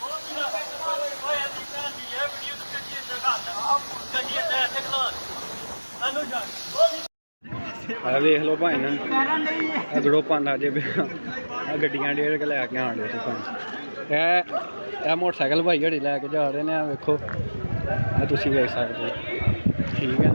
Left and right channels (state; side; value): inverted; both; correlation -1.00